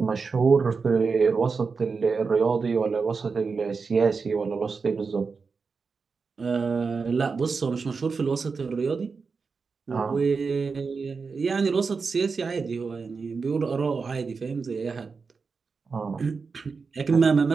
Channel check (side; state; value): left; quieter; 4.9 dB